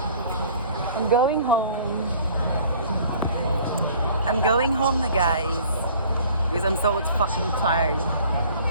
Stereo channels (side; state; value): both; inverted; correlation -0.51